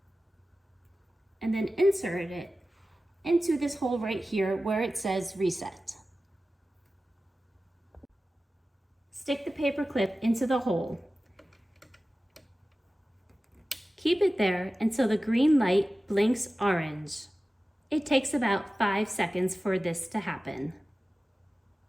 and then insert it into this hole right here where it says reset. Stick the paper clip into the hole. Keep it there until the green light blinks orange. It takes about 5 seconds for this to happen.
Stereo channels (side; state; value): both; normal; correlation 0.95